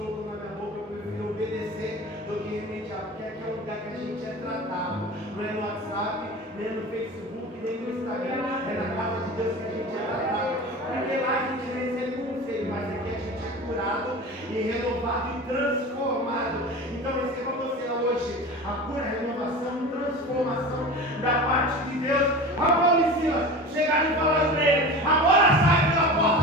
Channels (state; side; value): normal; both; correlation 0.33